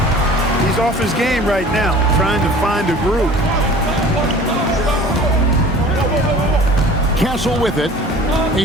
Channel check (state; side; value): normal; both; correlation 0.45